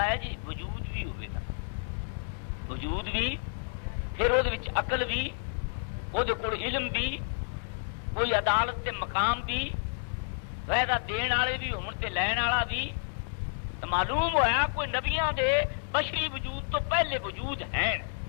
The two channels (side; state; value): right; silent; digital silence